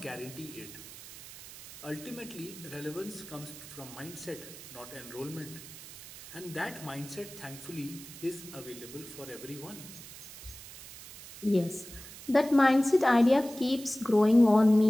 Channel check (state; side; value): noise; right; hiss, 15 dB below the sound